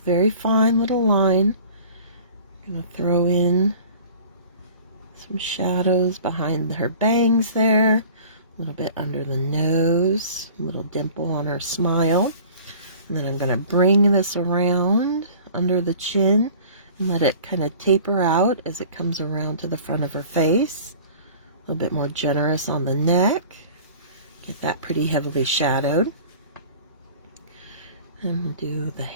very fine little line. I'm going to throw in some shadows behind her bangs there, a little bit under the nose, a little dimple on her smile. And then I'm going to bring this around under the chin and let it kind of taper out as it comes around to the front of her face. A little bit more generous on the neck. Get that pretty heavily shadowed. And we'll do the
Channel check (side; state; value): both; inverted; correlation -0.45